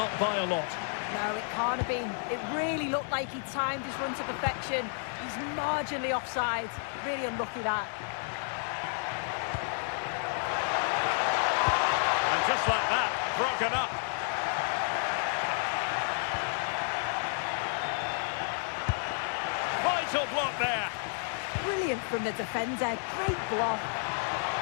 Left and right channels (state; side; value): silent; right; 57 dB below the other